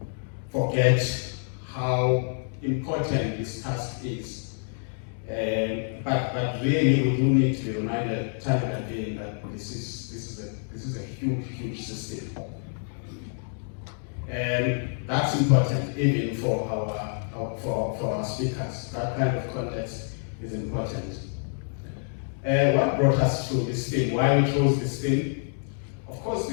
forget how important this task is, but really we do need to be reminded time and again that this is a huge system, and that's important even for our speakers. That kind of context is important. What brought us to this thing? Why we chose this thing? Of course,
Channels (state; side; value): silent; right; 60 dB below the other